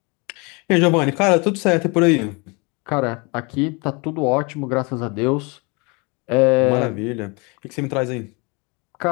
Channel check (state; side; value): quieter; right; 29.7 dB